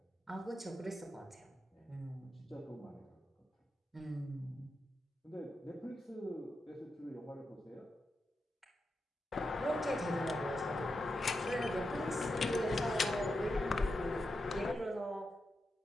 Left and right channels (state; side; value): normal; both; correlation 0.87